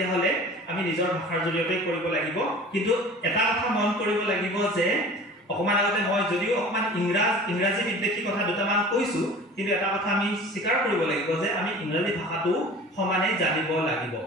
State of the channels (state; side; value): normal; both; correlation 0.42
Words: আমি নিজৰ ভাষাৰ জৰিয়তে কৰিব লাগিব কিন্তু এটা কথা মন কৰিব লাগিব যে অকমান আগতে মই যদিও অকমান ইংৰাজী বিদ্বেষী কথা দুটামান কৈছো কিন্তু এটা কথা আমি স্বীকাৰ কৰিব লাগিব যে আমি ইংৰাজী ভাষাটো সমানে জানিব লাগিব